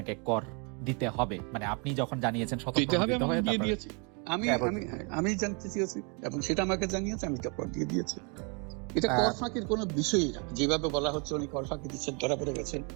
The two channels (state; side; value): quieter; left; 34.8 dB